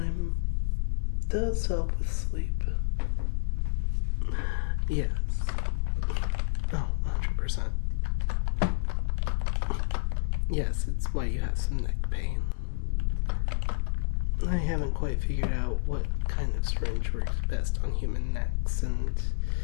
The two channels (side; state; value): right; silent; digital silence